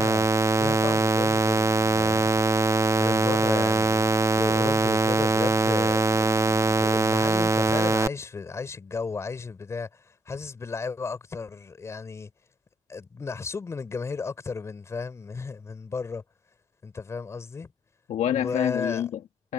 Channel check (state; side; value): normal; both; correlation 0.73